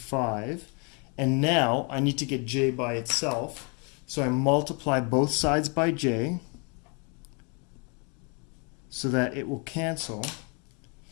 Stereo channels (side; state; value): right; quieter; 34.6 dB